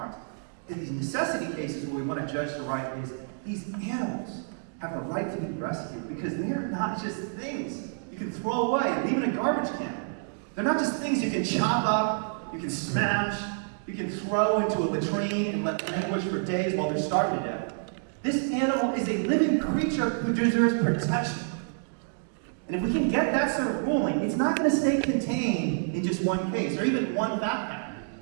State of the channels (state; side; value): silent; left; digital silence